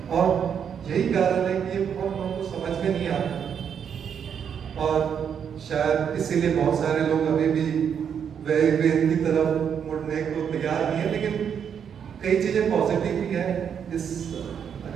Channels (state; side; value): quieter; left; 7.8 dB